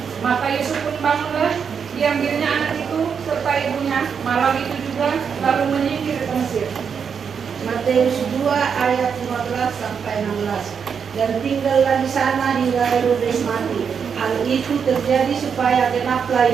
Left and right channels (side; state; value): left; quieter; 6.7 dB